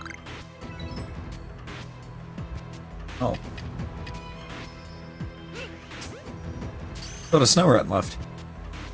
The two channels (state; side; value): identical; both; correlation 1.00